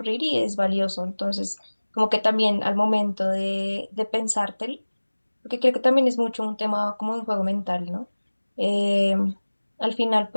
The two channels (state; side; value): inverted; both; correlation -1.00